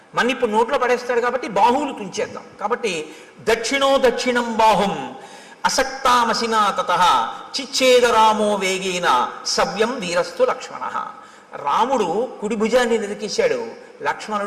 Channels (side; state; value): both; identical; correlation 1.00